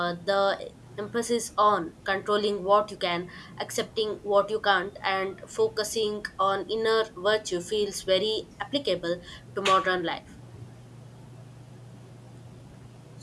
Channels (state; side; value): identical; both; correlation 1.00